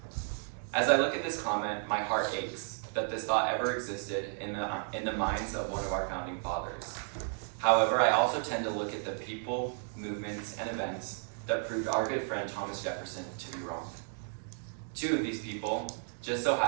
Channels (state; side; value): silent; left; 56 dB below the other